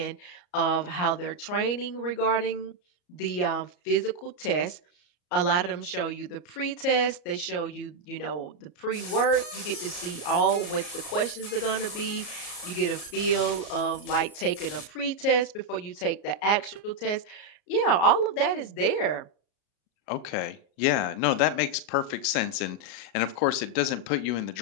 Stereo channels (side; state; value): right; late; 34 ms